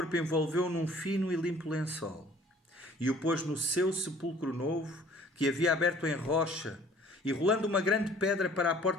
envolveu-o num fino e limpo lençol, e o pôs no seu sepulcro novo, que havia aberto em rocha, e rolando uma grande pedra para a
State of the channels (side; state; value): both; normal; correlation 0.53